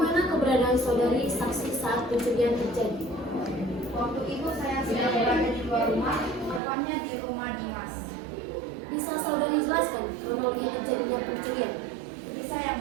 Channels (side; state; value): left; drops out; at 6.6 s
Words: keberadaan saudari saksi saat pencurian terjadi? Waktu itu saya sedang berada di luar rumah, tepatnya di rumah Dimas. Bisa saudari jelaskan kronologi terjadinya pencurian? Bisa yang